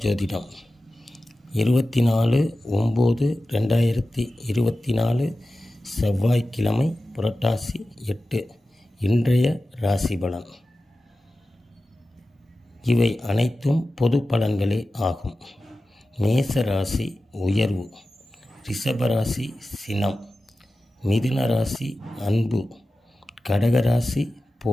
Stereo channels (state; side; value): normal; both; correlation 0.94